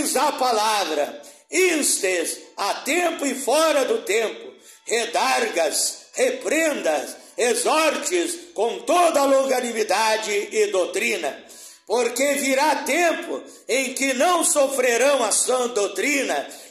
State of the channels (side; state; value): both; identical; correlation 1.00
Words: a palavra, instes a tempo e fora do tempo, redargas, reprendas, exortes com toda a longanimidade e doutrina, porque virá tempo em que não sofrerão a sã doutrina,